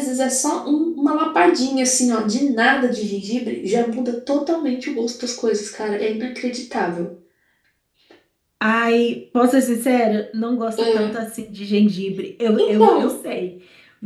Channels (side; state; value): both; identical; correlation 1.00